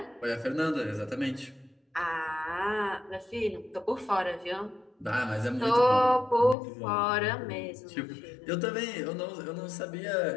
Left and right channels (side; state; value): right; drops out; at 6.6 s